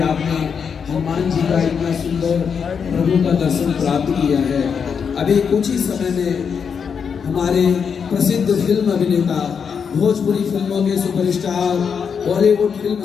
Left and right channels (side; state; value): right; quieter; 6.6 dB